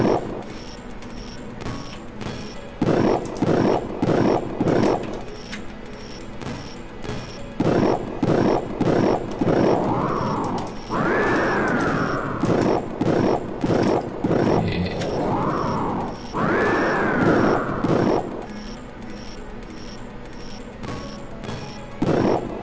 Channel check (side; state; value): both; identical; correlation 1.00